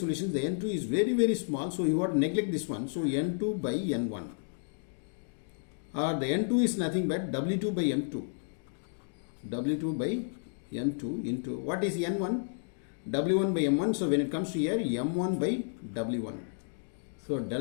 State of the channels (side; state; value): right; silent; digital silence